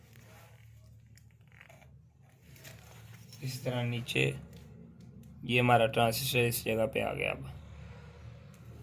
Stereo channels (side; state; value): both; identical; correlation 1.00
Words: इसी तरह नीचे। ये हमारा ट्रांसिस्टर इस जगह पे आ गया। अब